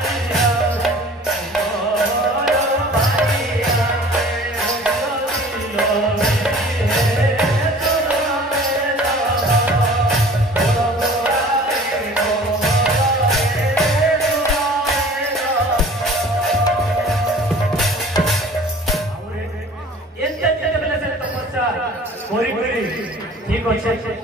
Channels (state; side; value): normal; both; correlation 0.46